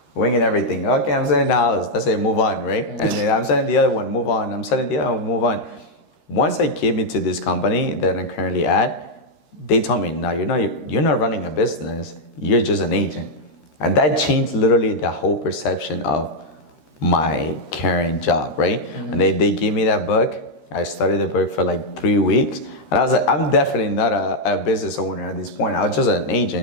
winging everything. Okay, I'm selling the house. That's it, move on, right? And then I'm selling the other one, move on. I'm selling the other one, move on. Once I came into this company that I'm currently at, they told me, no, you're not running a business. You're just an agent. And that changed literally the whole perception of my current job, right? And they gave me that book. I studied the book for like 3 weeks. And I was like, I'm definitely not a business owner at this point. I was just an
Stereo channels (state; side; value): late; right; 13 ms